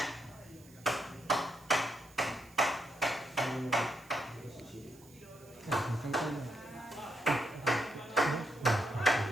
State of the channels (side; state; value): right; noise; hiss, 25 dB below the sound